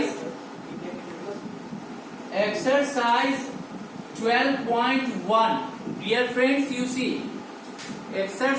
12.1. Dear friends, you see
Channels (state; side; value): identical; both; correlation 1.00